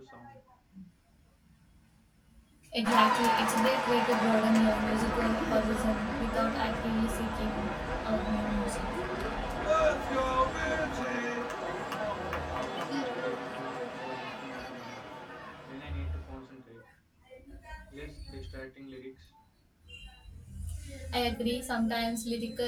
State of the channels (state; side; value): identical; both; correlation 1.00